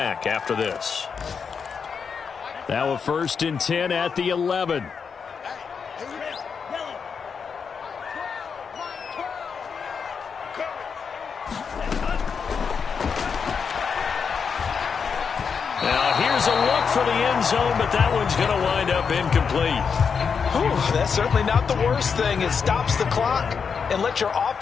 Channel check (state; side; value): quieter; right; 6.1 dB